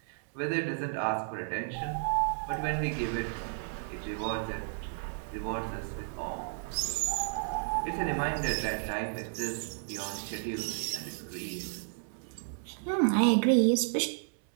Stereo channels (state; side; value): silent; left; 56 dB below the other